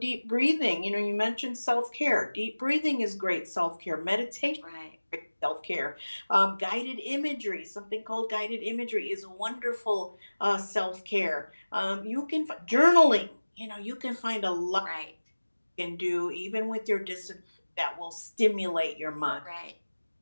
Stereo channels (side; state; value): both; inverted; correlation -1.00